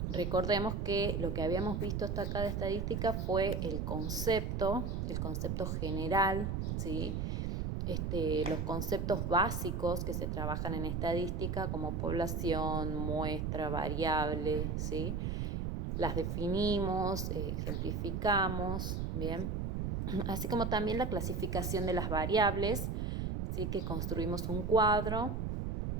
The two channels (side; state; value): right; noise; rumble, 1 dB below the sound